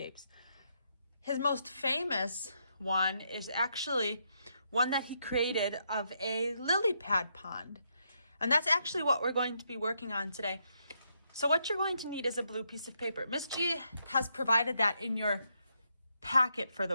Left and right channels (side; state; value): both; inverted; correlation -0.79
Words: His most famous one is actually one that he created of a lily pad pond. And that's actually what we're going to be working on today. So what you're going to need is a blue piece of paper. Miss G has provided that in your packet for